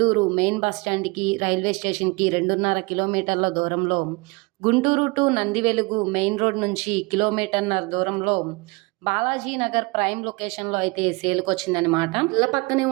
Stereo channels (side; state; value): left; quieter; 27.2 dB